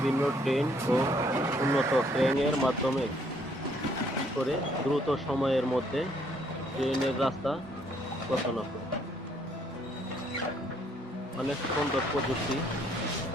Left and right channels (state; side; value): normal; both; correlation 0.67